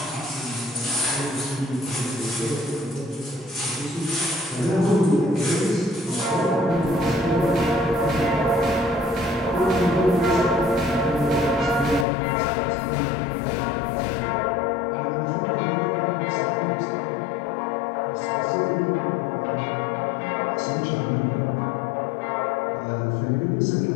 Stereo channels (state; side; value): drops out; right; at 12.1 s